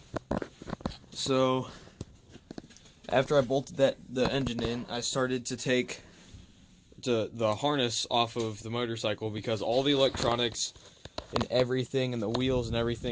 So after I bolted the engine in, I started to take the harness off of the motorcycle because all the electronics and everything, and the wheels and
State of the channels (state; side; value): identical; both; correlation 1.00